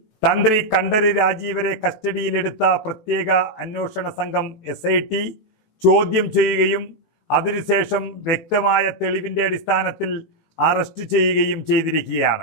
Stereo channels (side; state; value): right; late; 18 ms